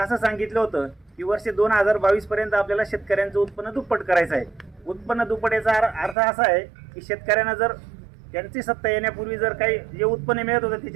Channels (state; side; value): drops out; left; at 6.2 s